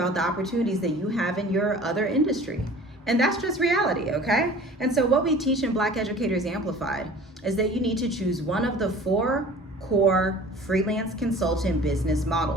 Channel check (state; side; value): normal; both; correlation 0.45